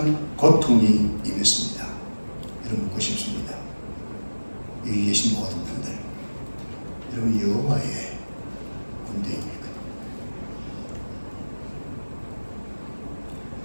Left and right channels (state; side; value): inverted; both; correlation -1.00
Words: 고통이 임했습니다. 여러분, 묻고 싶습니다. 여기 계신 모든 분들, 여러분 여호와의 군대입니까?